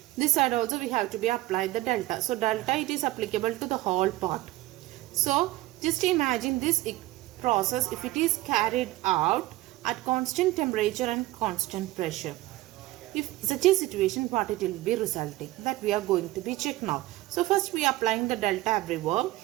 this side also we have to be applied the delta. So delta it is applicable to the whole part. So just imagine this process if it is carried out at constant temperature and constant pressure. If such a situation, what it will be resulting, that we are going to be check now. So first we are applying the delta everywhere.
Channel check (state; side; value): quieter; left; 17.9 dB